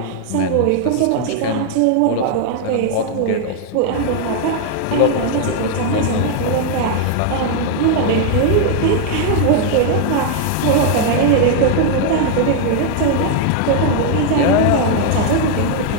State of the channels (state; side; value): different; both; correlation 0.00